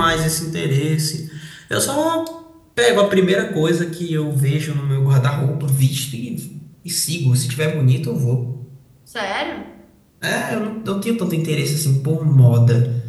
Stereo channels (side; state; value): both; identical; correlation 1.00